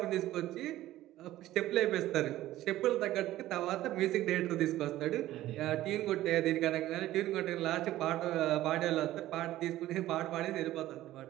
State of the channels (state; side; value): quieter; left; 14.9 dB